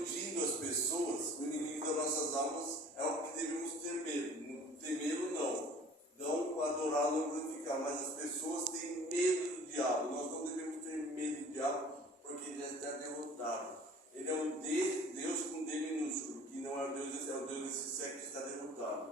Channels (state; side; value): normal; both; correlation 0.49